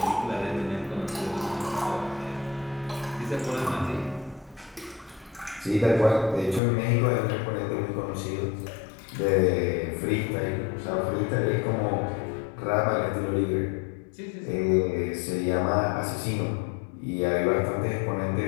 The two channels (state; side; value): drops out; right; at 6.6 s